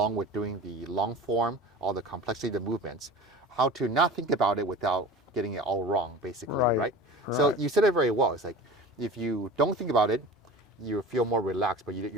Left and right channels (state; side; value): normal; both; correlation 0.36